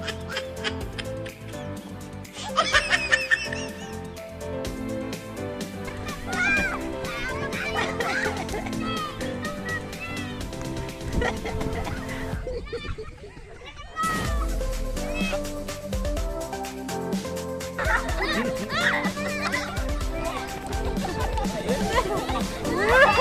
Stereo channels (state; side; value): identical; both; correlation 1.00